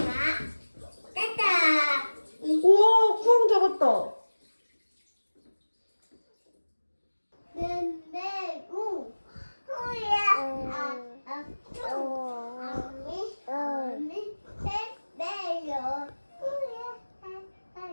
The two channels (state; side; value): inverted; both; correlation -1.00